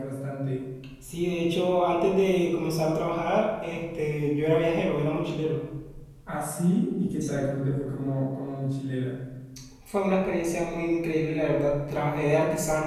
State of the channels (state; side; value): identical; both; correlation 1.00